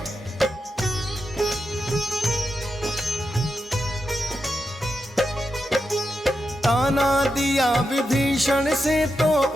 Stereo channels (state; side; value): normal; both; correlation 0.87